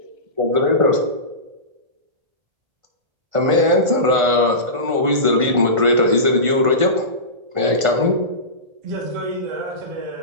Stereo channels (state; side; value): late; left; 1.5 ms